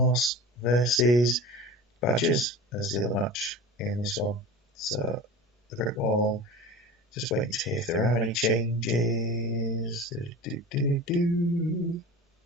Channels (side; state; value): both; normal; correlation 0.34